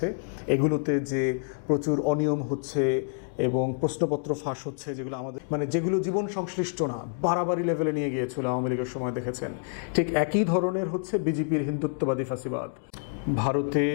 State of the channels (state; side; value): silent; right; 60 dB below the other